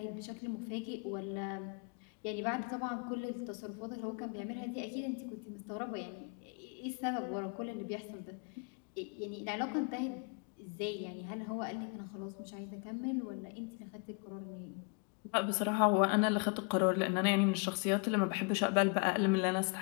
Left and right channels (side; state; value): right; quieter; 34.1 dB